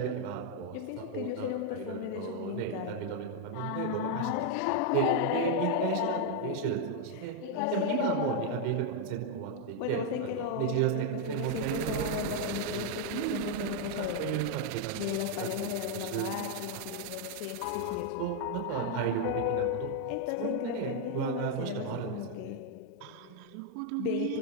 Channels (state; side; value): different; both; correlation 0.00